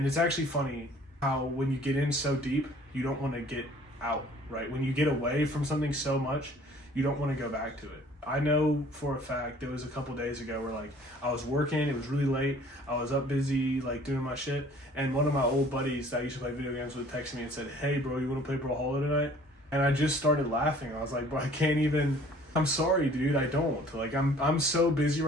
it's actually funny how when you get in so deep, you don't want to get out, right? When you get away from something so much, you don't want to go back to it. I know for a fact there was a couple days ago where like I was working, it was really late, I was up busy like doing my shit, and one of my old buddies that I used to play video games with texted me and said, hey bro, you want to play Brawlhalla tonight? And I just started laughing. I was like, bro, I can't even... I'm sorry, dude. I don't. Like, I'm so busy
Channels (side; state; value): both; normal; correlation 0.53